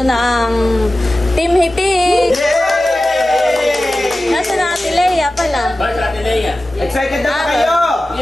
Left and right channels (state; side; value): normal; both; correlation 0.95